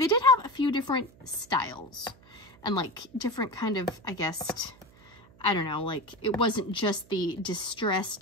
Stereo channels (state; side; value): noise; right; hum, 26 dB below the sound